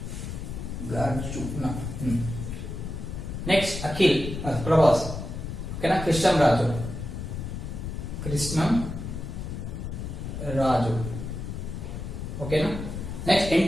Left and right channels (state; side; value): noise; left; rumble, 6 dB below the sound